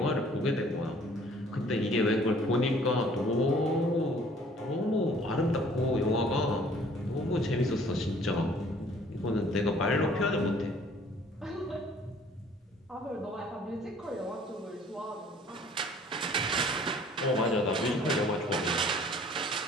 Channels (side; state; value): both; normal; correlation 0.55